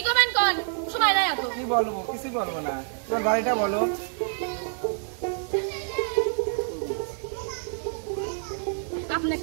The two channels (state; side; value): silent; left; 60 dB below the other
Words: করবেন কোন? সময় নাই এত। কি বলবো? কিছুই বলবো না। তোমার বাড়িটা বলো। আপনার